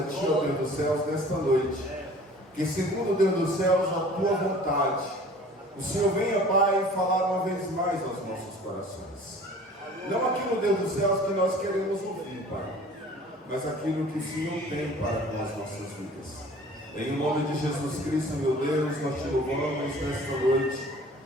ti, ó Deus dos céus, nesta noite, que segundo Deus dos céus, a tua vontade, o Senhor venha, Pai, falar uma vez mais aos nossos corações. Não aquilo, Deus dos céus, que nós queremos ouvir, Pai, mas aquilo que o Senhor tem para com as nossas vidas. Em nome de Jesus Cristo, meu Deus, nós te louvamos nesta noite.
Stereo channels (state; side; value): normal; both; correlation 0.47